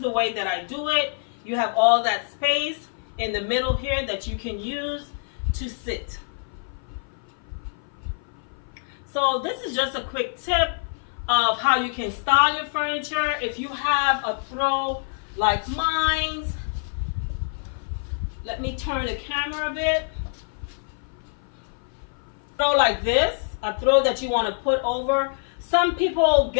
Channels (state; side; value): silent; right; 56 dB below the other